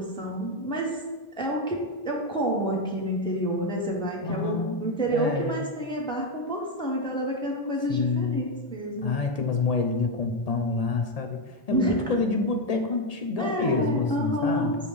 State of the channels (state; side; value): late; right; 1.8 ms